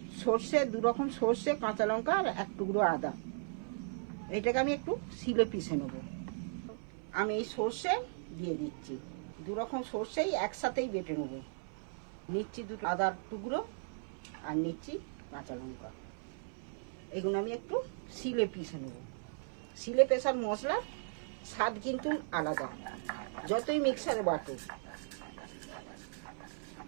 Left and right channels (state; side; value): silent; left; 53 dB below the other